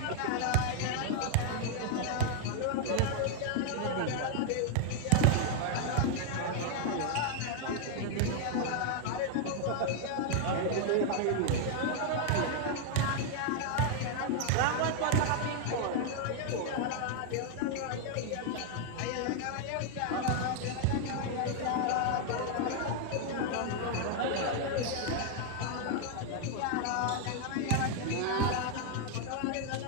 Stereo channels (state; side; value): different; both; correlation 0.00